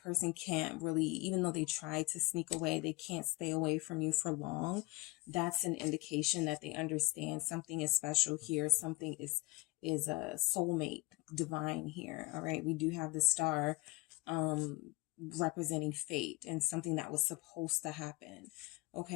can't really, even though they try to sneak away, they can't stay away from you for long. That's an indication that they understand something is special here. Something is a soulmate, divine here. All right. We do have the star representing fate and something that was supposed to happen.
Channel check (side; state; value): right; quieter; 23.0 dB